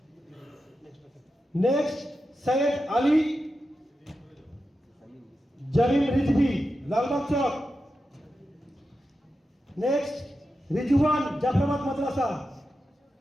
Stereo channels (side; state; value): both; normal; correlation 0.90